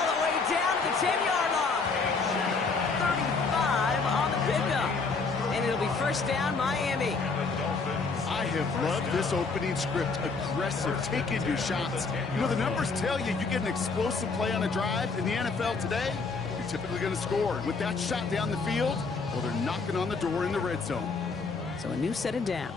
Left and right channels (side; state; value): right; quieter; 4.4 dB